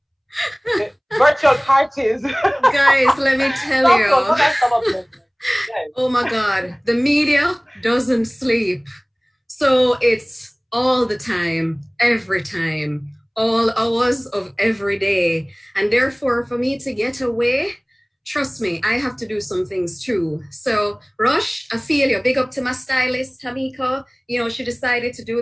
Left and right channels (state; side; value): identical; both; correlation 1.00